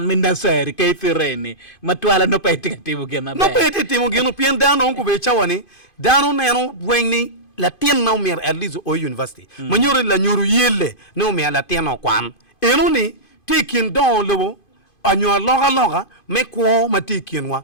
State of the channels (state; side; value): late; right; 2.5 ms